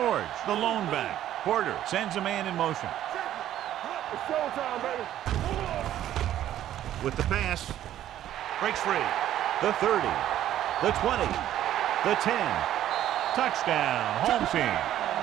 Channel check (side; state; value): left; quieter; 12.1 dB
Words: the lone back. Porter sends a man in motion. It's showtime, baby. With the pass, breaks free. The 30, the 20, the 10. Touchdown, home team.